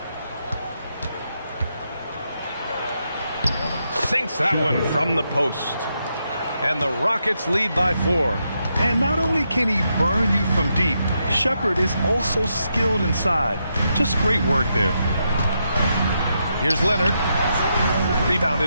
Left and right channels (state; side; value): inverted; both; correlation -0.82